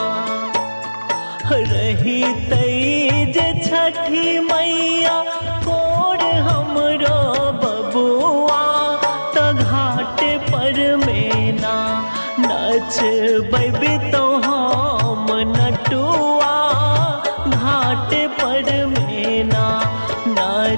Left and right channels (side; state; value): both; inverted; correlation -1.00